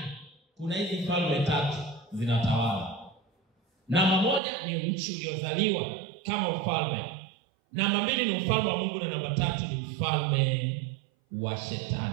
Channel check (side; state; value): left; drops out; at 4.4 s